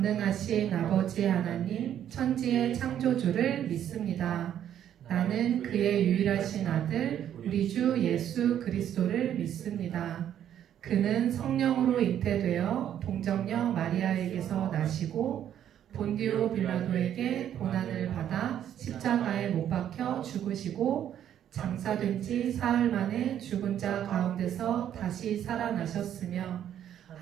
아버지 하나님 천지의 창조주를 믿습니다. 나는 그의 유일하신 아들 우리 주 예수 그리스도를 믿습니다. 그는 성령으로 잉태되어 동정녀 마리아에게서 나시고 본디오 빌라도에게 고난을 받아 십자가에 못 박혀 죽으시고 장사된 지 사흘 만에 죽은 자 가운데서 다시 살아나셨으며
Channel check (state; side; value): quieter; left; 10.3 dB